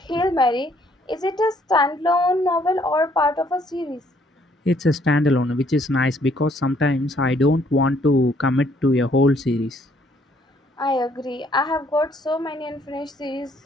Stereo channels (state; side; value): normal; both; correlation 0.66